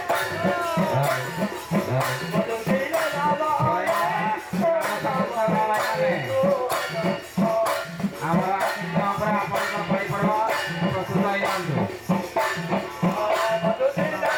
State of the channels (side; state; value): both; identical; correlation 1.00